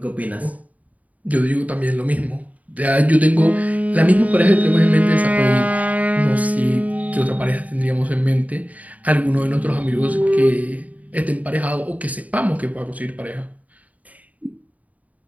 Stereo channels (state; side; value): late; left; 0.072 ms